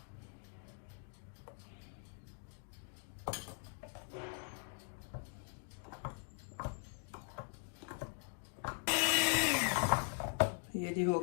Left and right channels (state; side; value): silent; right; 50 dB below the other